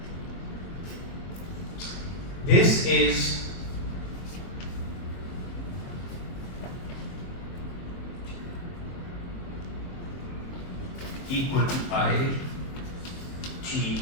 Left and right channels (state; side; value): late; right; 23 ms